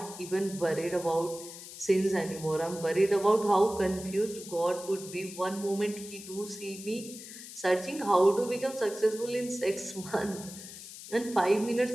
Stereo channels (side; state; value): left; noise; hiss, 13 dB below the sound